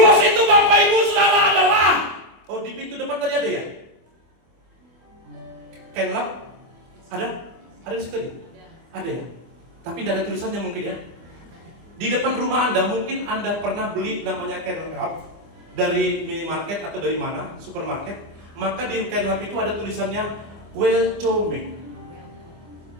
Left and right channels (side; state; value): left; late; 24 ms